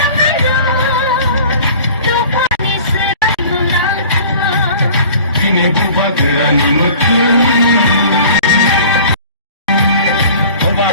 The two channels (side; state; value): both; inverted; correlation -0.45